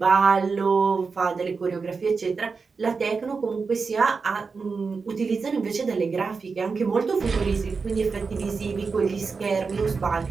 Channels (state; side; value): quieter; left; 4.8 dB